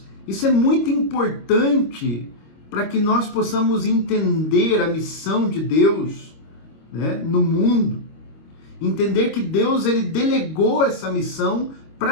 isso é muito importante para que nós possamos entender a missão de Deus no mundo. Entender que Deus ele delegou essa missão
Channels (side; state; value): right; late; 25 ms